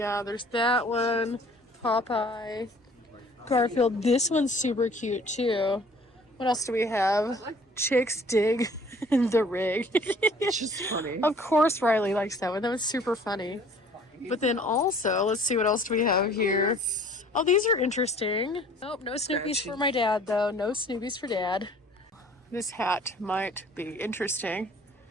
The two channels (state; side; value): normal; both; correlation 0.53